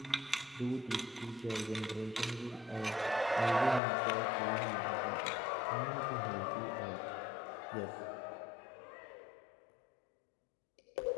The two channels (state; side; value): drops out; right; at 3.8 s